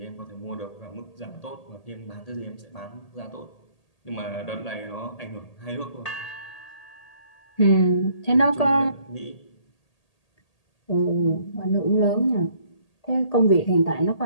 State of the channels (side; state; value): right; late; 1.8 ms